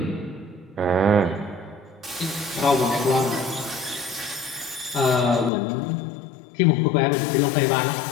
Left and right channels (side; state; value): right; drops out; at 5.5 s